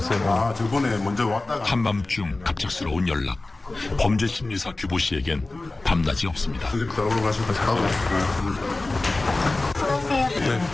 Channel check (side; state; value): right; quieter; 3.1 dB